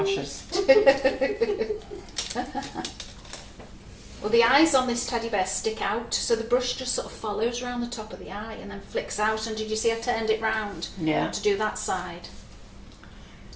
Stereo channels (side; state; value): both; identical; correlation 1.00